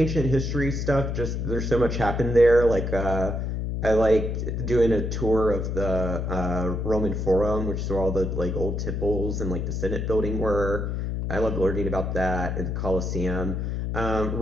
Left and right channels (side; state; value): left; noise; hum, 2 dB below the sound